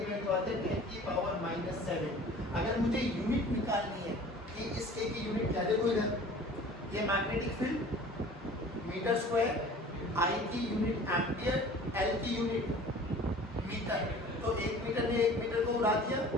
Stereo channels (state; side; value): normal; both; correlation 0.45